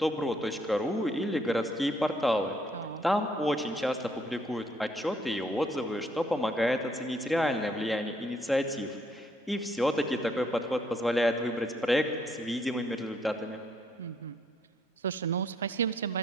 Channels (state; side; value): normal; both; correlation 0.69